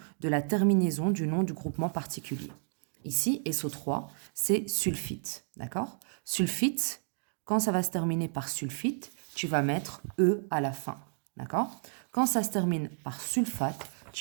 de la terminaison du nom du groupement particulier. Ici, SO3, c'est sulfite, d'accord? Sulfite, quand ça va se terminer par sulfite, tu vas mettre E à la fin, d'accord? Quand ça se termine par sulfate,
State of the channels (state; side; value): silent; left; digital silence